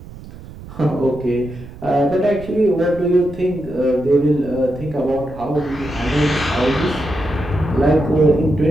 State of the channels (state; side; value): noise; right; rumble, 16 dB below the sound